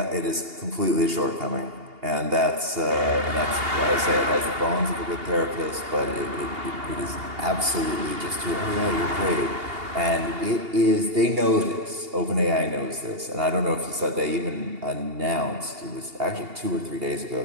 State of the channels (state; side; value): late; left; 2.8 ms